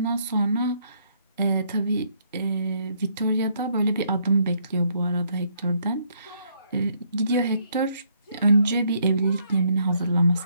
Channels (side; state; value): both; inverted; correlation -0.70